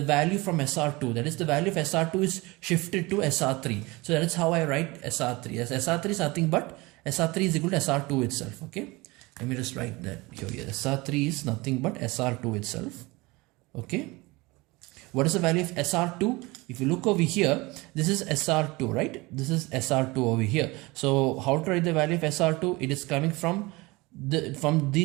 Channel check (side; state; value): left; quieter; 23.1 dB